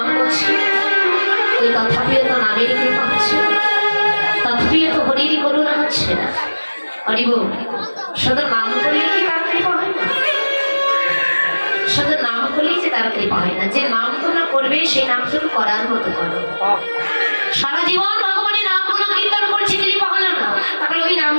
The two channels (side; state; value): both; inverted; correlation -1.00